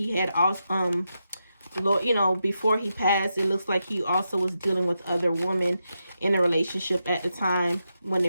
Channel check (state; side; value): inverted; both; correlation -0.86